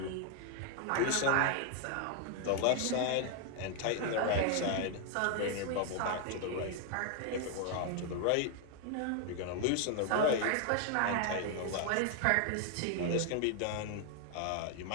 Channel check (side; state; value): both; different; correlation 0.00